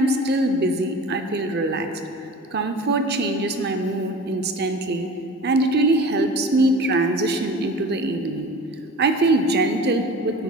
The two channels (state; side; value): normal; both; correlation 0.38